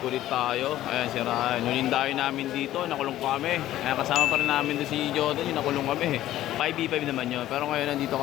ulit tayo. Ayan si Ryan. Nulindayo namin dito. Nakulong kami. Ayan, kasama pa rin namin doon si Jordan. Yung nakulong kami. 5v5 naman yun. Pero ngayon nandito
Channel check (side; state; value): right; quieter; 13.8 dB